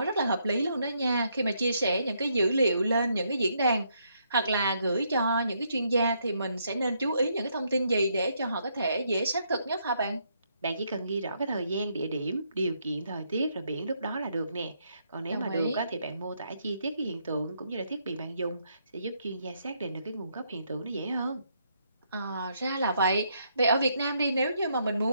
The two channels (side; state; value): both; inverted; correlation -0.75